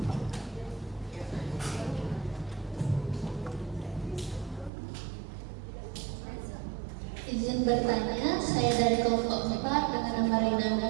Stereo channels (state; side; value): drops out; left; at 4.7 s